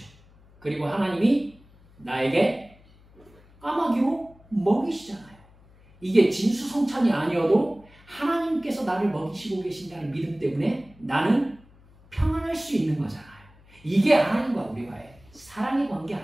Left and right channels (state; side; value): noise; left; hum, 27 dB below the sound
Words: 그리고 하나님이 나에게 까마귀로 먹이시잖아요. 이게 진수성찬이 아니어도 하나님께서 나를 먹이시고 계신다는 믿음 때문에 나는 평안할 수 있는 거잖아요. 이게 하나님과 우리와의 사랑의 관계